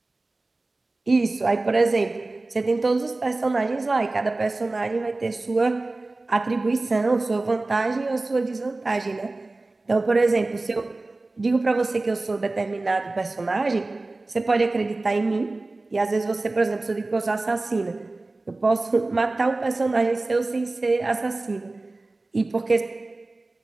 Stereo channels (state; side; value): quieter; left; 3.2 dB